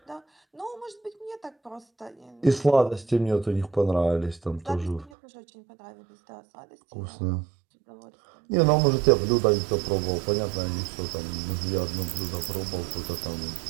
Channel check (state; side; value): drops out; left; at 5.1 s